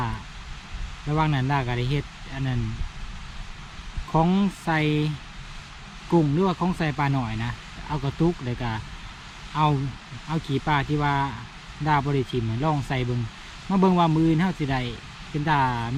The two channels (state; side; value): identical; both; correlation 1.00